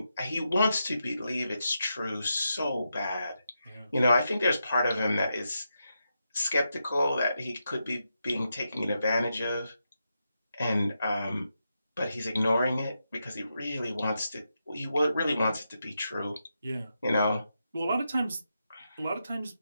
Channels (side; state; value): both; inverted; correlation -0.86